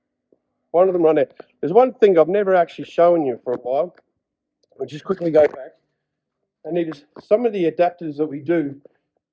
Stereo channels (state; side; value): identical; both; correlation 1.00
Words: One of them right there. There's one thing I've never actually shown you for a while. I'll just quickly go back. And it is some of the adapters that we do